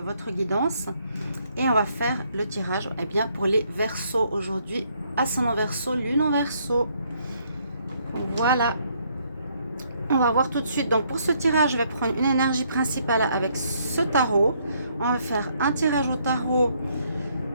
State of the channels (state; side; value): inverted; both; correlation -0.70